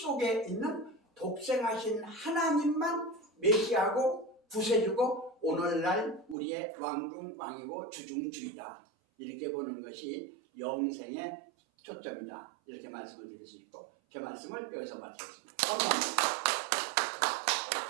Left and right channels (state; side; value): drops out; left; at 6.4 s